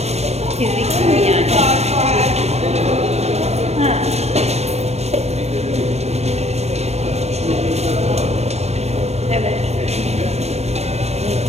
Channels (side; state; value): left; late; 0.31 ms